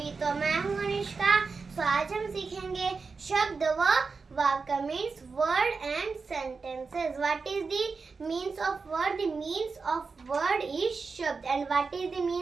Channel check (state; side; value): quieter; left; 4.6 dB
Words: तो मैं हूं अनुष्का। तो आज हम सीखेंगे शब्द व वाक्य means word and sentences. What is the means of word? The means of word is शब्द। And what is the